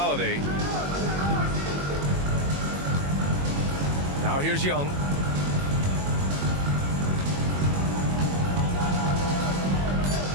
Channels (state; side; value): late; left; 21 ms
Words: Now here's Young.